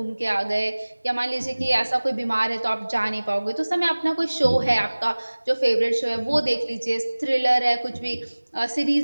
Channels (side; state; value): both; inverted; correlation -1.00